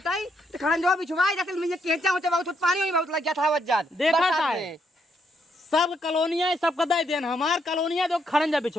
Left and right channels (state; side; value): normal; both; correlation 0.75